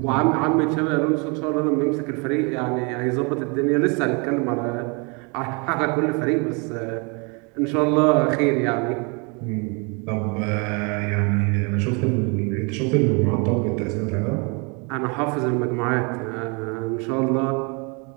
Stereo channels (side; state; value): left; quieter; 32.5 dB